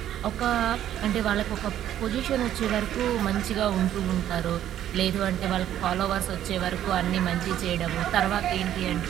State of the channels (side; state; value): left; quieter; 11.5 dB